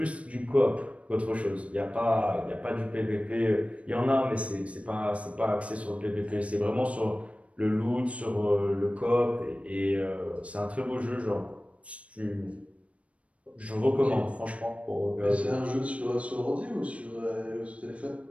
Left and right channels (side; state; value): left; late; 0.064 ms